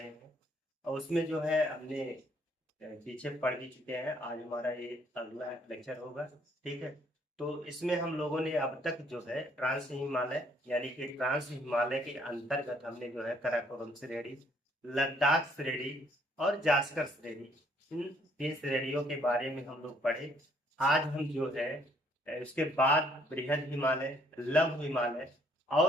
हैं और उसमें जो है हमने पीछे पढ़ भी चुके हैं। आज हमारा ये अगला लेक्चर होगा, ठीक है। तो इसमें हम लोगों ने अब तक जो है ट्रांस हिमालय यानी कि ट्रांस हिमालय के अंतर्गत हमने जो है काराकोरम श्रेणी, लद्दाख श्रेणी और जास्कर श्रेणी, इन तीन श्रेणियों के बारे में हम लोग पढ़े। आज हम जो है उसके बाद बृहद हिमालय, लघु हिमालय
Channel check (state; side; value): normal; both; correlation 0.65